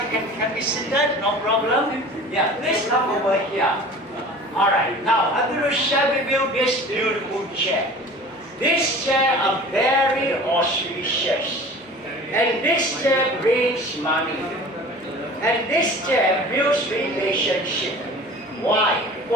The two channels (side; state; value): both; normal; correlation 0.41